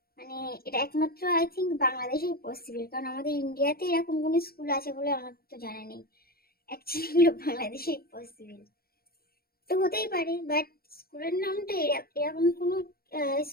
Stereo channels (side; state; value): right; late; 0.44 ms